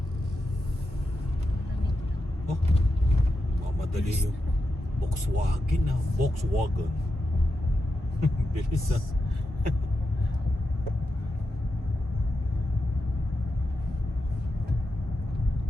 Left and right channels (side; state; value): both; normal; correlation 0.88